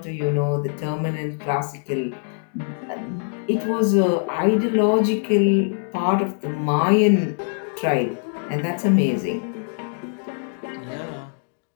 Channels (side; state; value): right; silent; digital silence